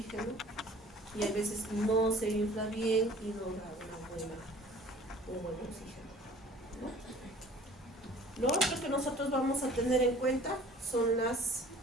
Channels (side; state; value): both; normal; correlation 0.49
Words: y a veces no se infla bien y no da un buen oxígeno, ¿no? Lo otro que nosotros vamos a tener en cuenta son